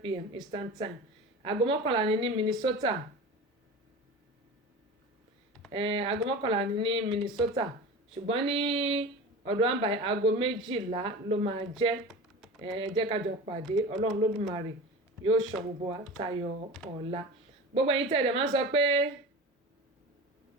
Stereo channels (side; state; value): both; normal; correlation 0.32